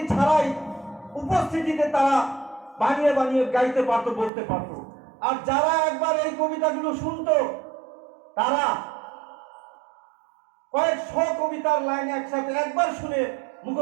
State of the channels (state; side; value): drops out; left; at 4.3 s